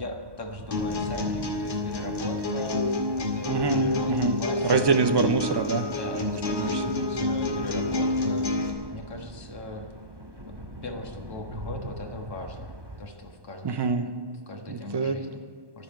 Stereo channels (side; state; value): left; late; 1.1 ms